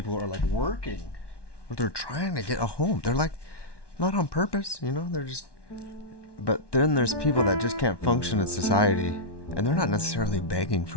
are like working, or they're trying to get a home. They're like not on purpose, they're just. But then there's people that just can't function in society, and they're not necessarily begging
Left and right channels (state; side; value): late; right; 1.1 ms